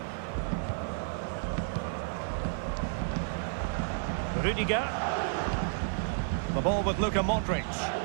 Rudiger. The ball with Luka Modric.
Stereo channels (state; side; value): silent; left; digital silence